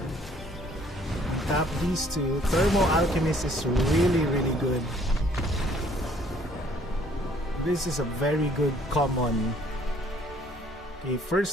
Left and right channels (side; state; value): both; normal; correlation 0.60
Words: Tap these 2. Thermo Alchemist is really good. This is a very good common. Okay,